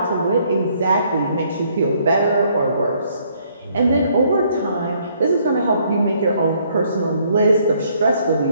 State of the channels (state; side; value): inverted; both; correlation -0.67